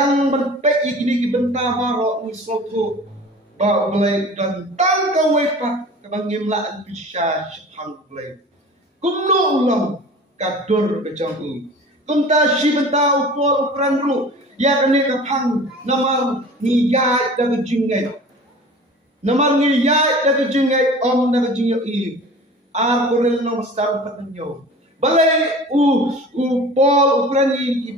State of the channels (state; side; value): normal; both; correlation 0.41